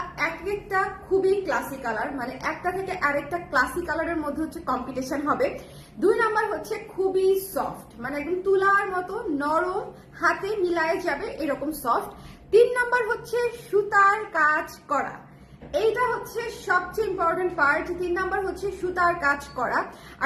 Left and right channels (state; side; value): identical; both; correlation 1.00